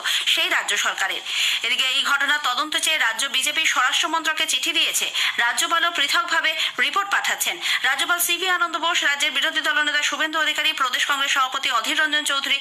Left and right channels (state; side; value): identical; both; correlation 1.00